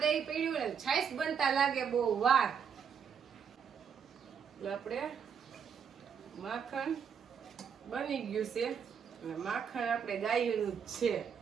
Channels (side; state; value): left; quieter; 7.1 dB